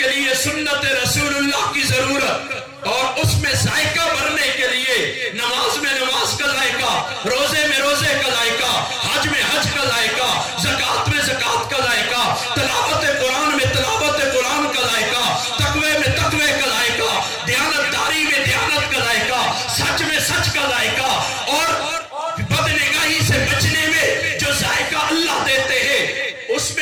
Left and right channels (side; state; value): both; identical; correlation 1.00